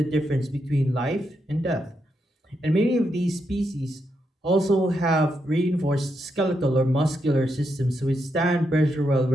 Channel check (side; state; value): both; normal; correlation 0.82